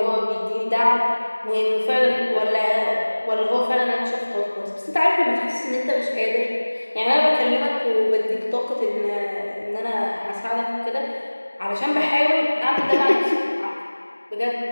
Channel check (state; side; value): inverted; both; correlation -1.00